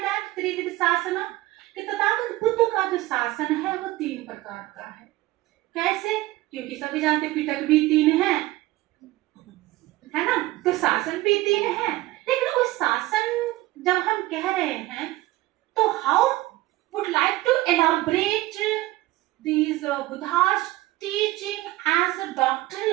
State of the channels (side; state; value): left; quieter; 18.0 dB